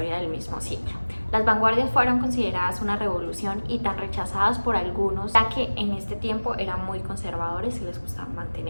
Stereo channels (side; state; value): both; inverted; correlation -1.00